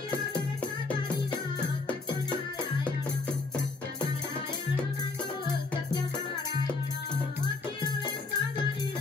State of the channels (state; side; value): quieter; right; 3.8 dB